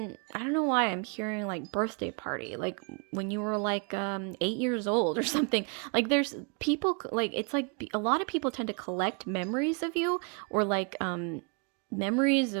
I don't know why I'm hearing like birthday party, like when you were like 8 years old or something. Like, there's people, like, it's like a lot of people tend to collect memories of you, or like memories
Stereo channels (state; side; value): quieter; left; 36.6 dB